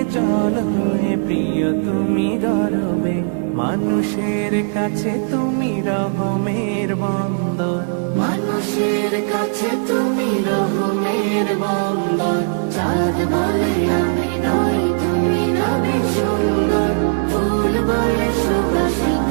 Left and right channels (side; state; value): left; silent; digital silence